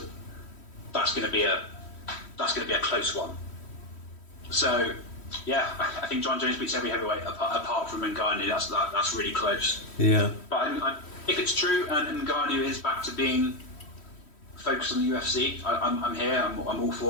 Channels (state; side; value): late; right; 3.1 ms